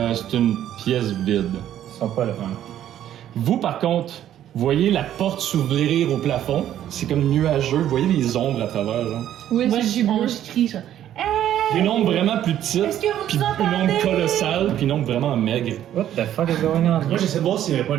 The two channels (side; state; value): left; quieter; 11.4 dB